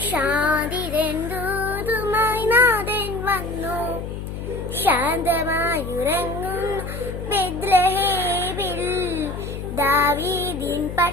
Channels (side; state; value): left; noise; hum, 7 dB below the sound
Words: ശാന്തിതൂതുമായി നാഥൻ വന്നു. ശാന്തമായുറങ്ങുന്ന ബെത്ലഹേമിൽ ദാവീദിൻ